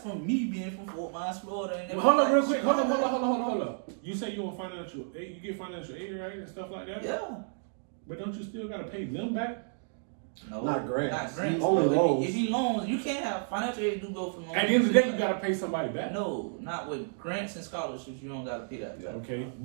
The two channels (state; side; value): silent; left; digital silence